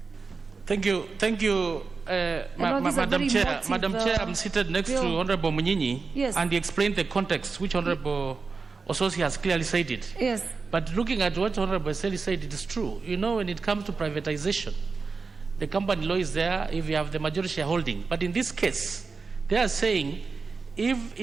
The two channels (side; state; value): left; quieter; 4.5 dB